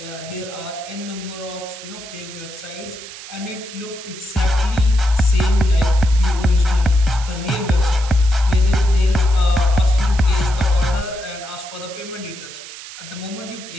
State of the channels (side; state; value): right; noise; hiss, 14 dB below the sound